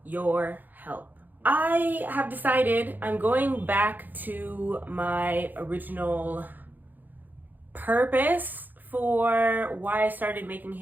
your help. I have decided I'm going back to my original purpose for why I started making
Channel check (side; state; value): left; late; 0.086 ms